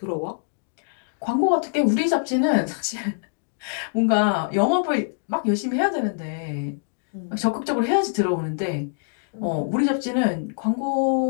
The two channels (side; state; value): right; silent; digital silence